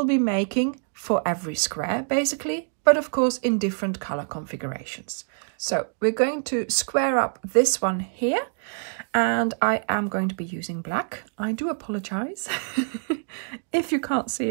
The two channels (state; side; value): silent; left; digital silence